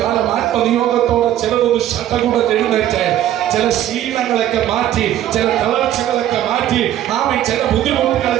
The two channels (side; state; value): left; quieter; 12.1 dB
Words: ആത്മനിയോഗത്തോടെ ചിലതൊന്ന് ശടകുടഞ്ഞെഴുന്നേറ്റ് ചില ശീലങ്ങളൊക്കെ മാറ്റി, ചില തളർച്ചകളൊക്കെ മാറ്റി, ചില